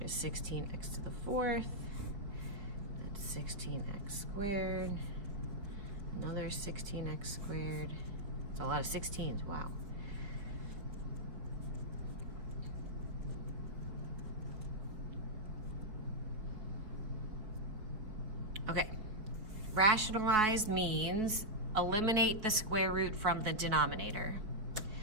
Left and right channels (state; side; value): late; left; 4.7 ms